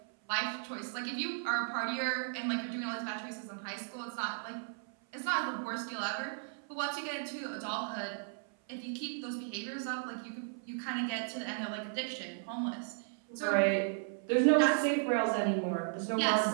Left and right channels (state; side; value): silent; left; 54 dB below the other